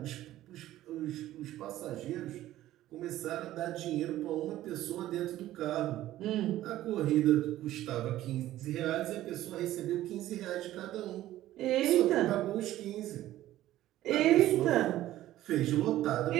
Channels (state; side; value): quieter; left; 14.4 dB